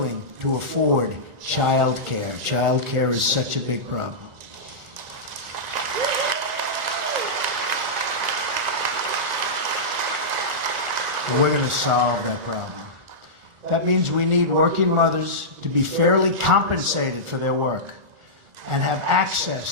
to afford child care. Child care is such a big problem. And we're going to solve that problem. That means we need working mothers to be fairly compensated for their work and have access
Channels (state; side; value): late; left; 1.4 ms